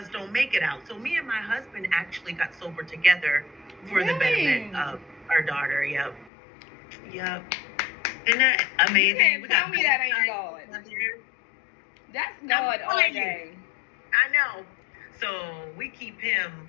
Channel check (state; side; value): drops out; right; at 6.3 s